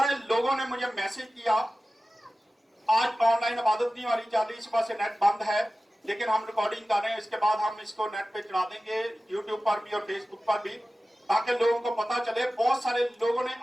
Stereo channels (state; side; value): normal; both; correlation 0.95